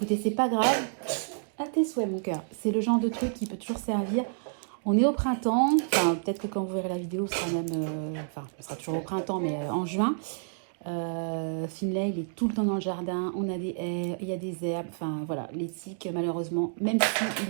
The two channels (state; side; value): silent; left; digital silence